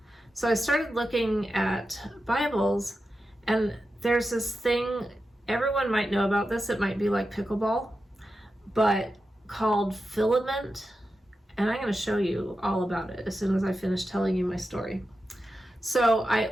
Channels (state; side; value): normal; both; correlation 0.90